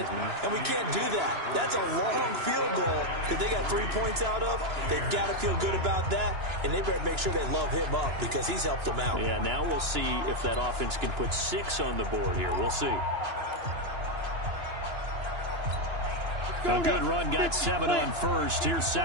And we can't do that. That's a long field goal that they got 3 points out of. They've got to feel good about that, and they better make sure they love him up because he's helped them out. Yeah, now we'll see if that offense can put 6 on the board here. We'll see. A good run, got 7 on first. Here's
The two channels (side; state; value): left; late; 2.9 ms